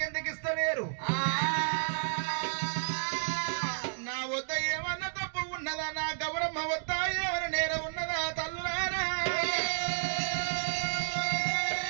ఇస్తలేరు? నా వద్ద ఏమన్నా తప్పు ఉన్నదా? నా గౌరమ్మ వద్ద ఏమైనా నేరం ఉన్నదా? తల్లులారా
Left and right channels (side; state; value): left; silent; digital silence